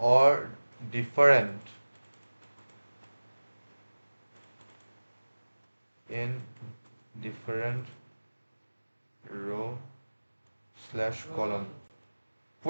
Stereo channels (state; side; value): inverted; both; correlation -1.00